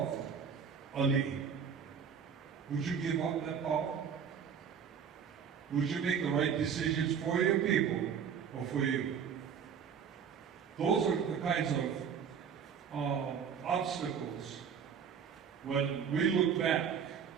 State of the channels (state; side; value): quieter; left; 7.2 dB